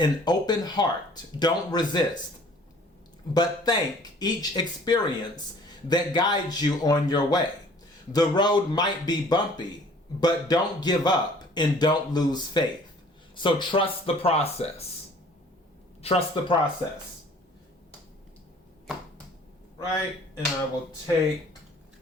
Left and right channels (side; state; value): both; normal; correlation 0.53